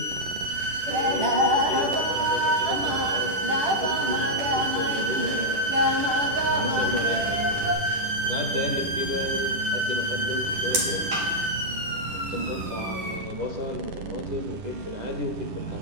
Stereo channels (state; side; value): late; left; 11 ms